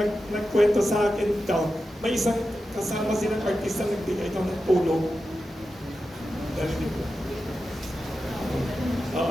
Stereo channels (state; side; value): normal; both; correlation 0.91